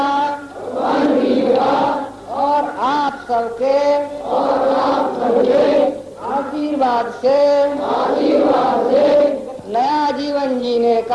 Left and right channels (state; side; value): identical; both; correlation 1.00